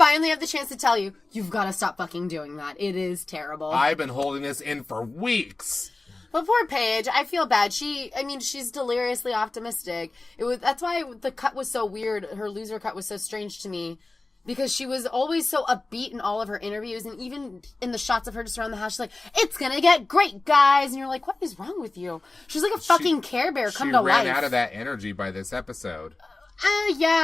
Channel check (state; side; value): quieter; right; 3.2 dB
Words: have the chance to tell you, you've got to stop fucking doing that. It is terrible. I've been holding this in for weeks. But poor Paige, I feel bad. She's deliriously optimistic. That's why the cut was so weird. Her loser cut was so strange to me. Because she was always so upbeat in all of her interviews, and even in the shots of her just around the house, she's like, "It's gonna get great, guys," and you're like, "What is wrong with you?" She's like a fucking Care Bear come to life. She ran out of that energy by this episode.